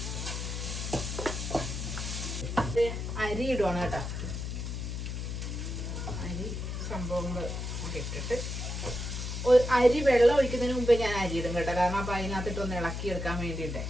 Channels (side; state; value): left; noise; hum, 4 dB below the sound